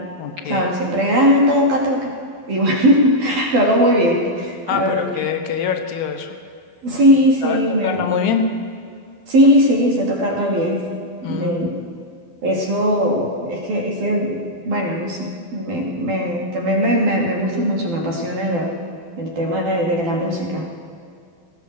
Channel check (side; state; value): left; late; 12 ms